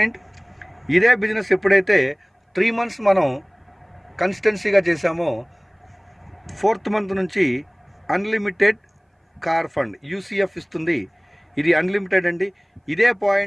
ఇదే బిజినెస్ ఎప్పుడైతే 3 months మనం కన్సిస్టెన్సీగా చేసామో 4th month నుంచి అన్లిమిటెడ్ కార్ ఫండ్ UCF ఇస్తుంది. ఇది అన్లిమిటెడ్ అండి. ఇదే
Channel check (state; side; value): identical; both; correlation 1.00